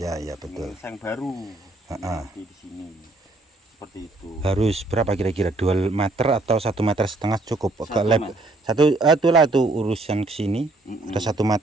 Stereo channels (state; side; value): quieter; left; 3.0 dB